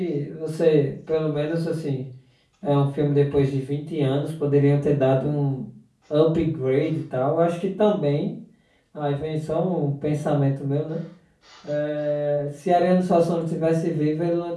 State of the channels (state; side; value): identical; both; correlation 1.00